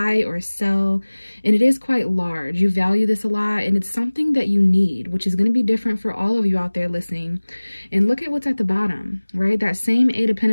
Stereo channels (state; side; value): inverted; both; correlation -1.00